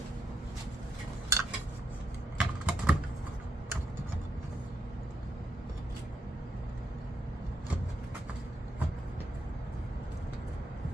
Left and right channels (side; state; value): both; normal; correlation 0.79